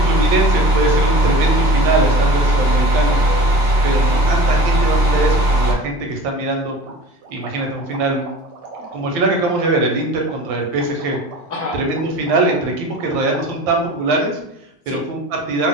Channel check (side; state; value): left; late; 3.4 ms